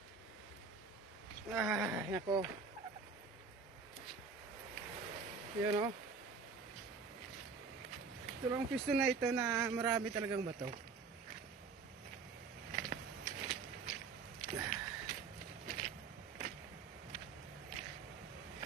Nako. Yun o. Ito lang pisto na ito na marami talagang bato.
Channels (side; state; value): left; quieter; 5.0 dB